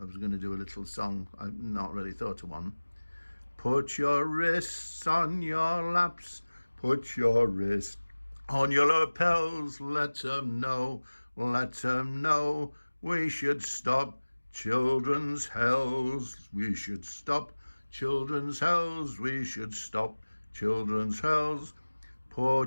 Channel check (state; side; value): inverted; both; correlation -1.00